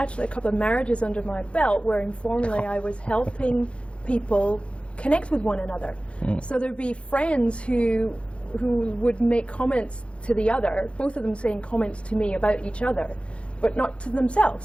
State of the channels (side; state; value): right; late; 0.059 ms